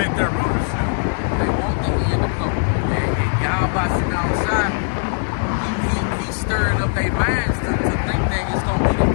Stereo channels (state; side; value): silent; right; 59 dB below the other